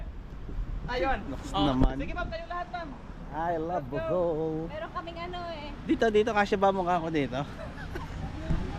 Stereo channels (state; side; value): identical; both; correlation 1.00